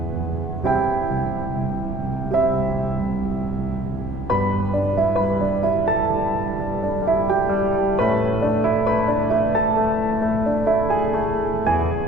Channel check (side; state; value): right; noise; rumble, 7 dB below the sound